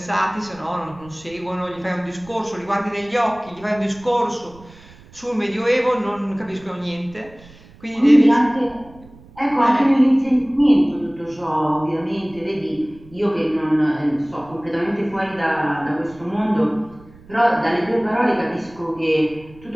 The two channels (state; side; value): noise; right; rumble, 23 dB below the sound